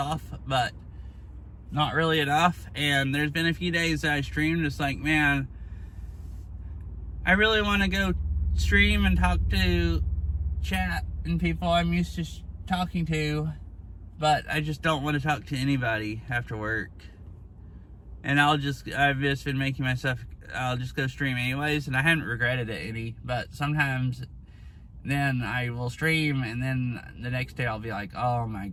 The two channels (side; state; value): both; identical; correlation 1.00